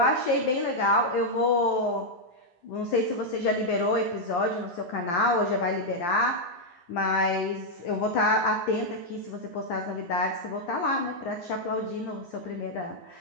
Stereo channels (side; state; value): right; late; 11 ms